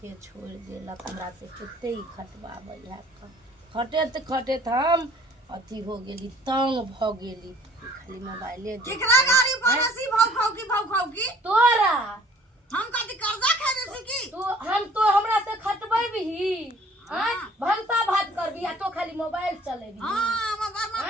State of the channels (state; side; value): normal; both; correlation 0.54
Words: के छोड़ देलक हमरा से कते ही खटवाबै है का खटेत खटेत हम अथी हो गेली तंग भ गेली खाली मोबाइले केकरा गाड़ी पड़ोसी भाव की तोरा हम कथि कर्जा खेले छी की तू हम तो हमरा से खटबैबही हां भंसा भात करबी आ तो खाली मोबाइल चलेबी हां हम बरमा